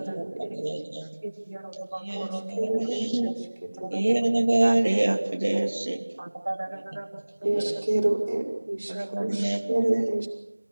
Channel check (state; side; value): inverted; both; correlation -1.00